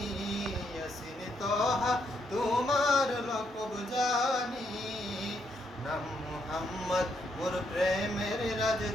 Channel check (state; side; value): normal; both; correlation 0.76